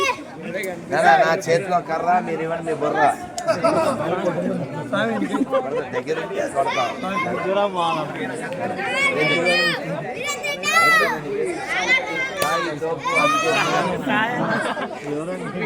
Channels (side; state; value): both; identical; correlation 1.00